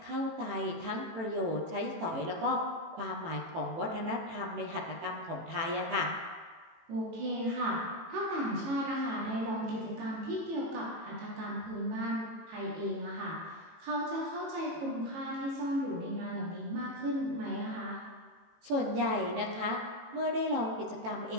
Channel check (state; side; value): late; left; 18 ms